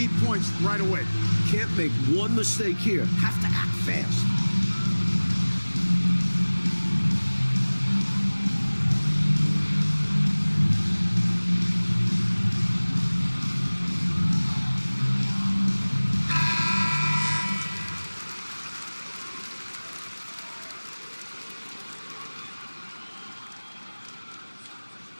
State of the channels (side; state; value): both; inverted; correlation -1.00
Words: points right away. Can't make one mistake here. Have to act fast.